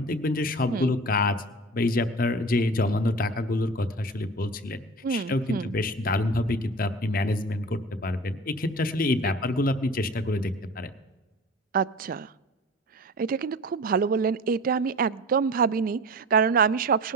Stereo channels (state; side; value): normal; both; correlation 0.37